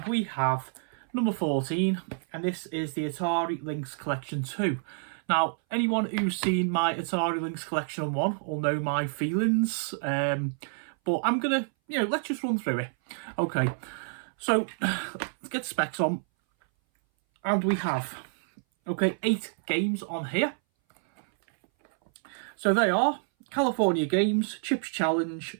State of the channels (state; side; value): silent; left; 59 dB below the other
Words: we have number 14 and this is the Atari Lynx Collection 2. Now, anyone who's seen my Atari Lynx Collection 1 will know my feelings, but I'm gonna, let's just run through it. Okay, so let's get the specs on and we have, 8 games on here. So they are California Games, Chips